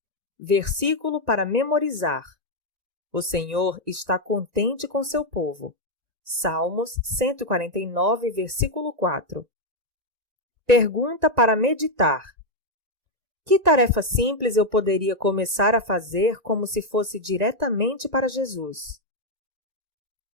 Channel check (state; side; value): late; left; 1.9 ms